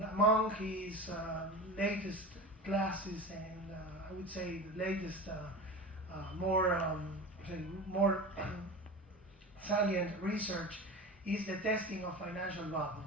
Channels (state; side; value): normal; both; correlation 0.30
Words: among his latest classes and I would say the latest more salient research is the testing of financial